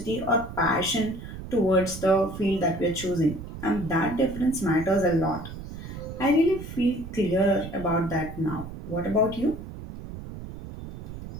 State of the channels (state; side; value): noise; right; rumble, 11 dB below the sound